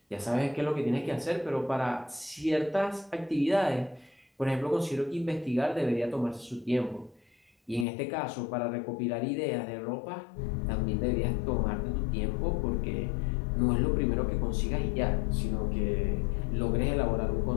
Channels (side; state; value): right; drops out; at 7.9 s